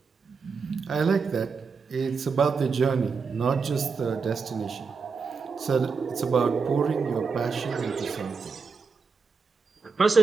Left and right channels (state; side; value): quieter; left; 5.1 dB